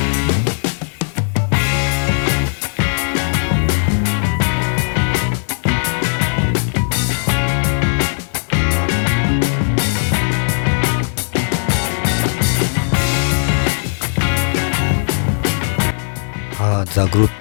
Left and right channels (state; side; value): silent; right; digital silence